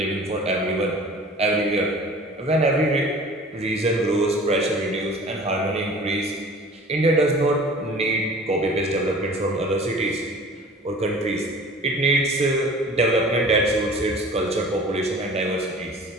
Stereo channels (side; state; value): both; normal; correlation 0.44